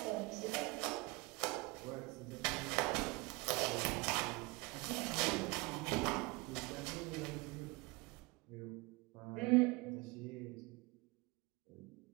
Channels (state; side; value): quieter; left; 24.9 dB